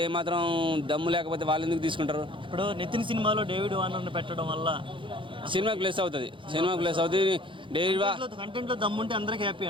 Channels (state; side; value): late; left; 0.25 ms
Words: ఏమాత్రం దమ్ము లేకపోతే వాళ్ళు ఎందుకు తీసుకుంటారు? ఇప్పుడు నితిన్ సినిమాలో డేవిడ్ వార్నర్ని పెట్టడం వల్ల సినిమాకి ప్లస్ అవుతుంది. డేవిడ్ కంటెంట్లో దమ్ముంటే అందరికి హ్యాపీ